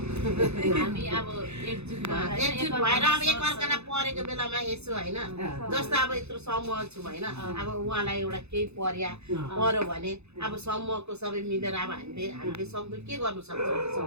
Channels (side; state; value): left; late; 0.81 ms